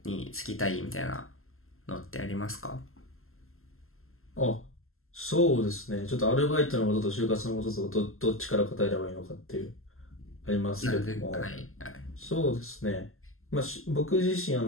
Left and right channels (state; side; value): late; right; 0.62 ms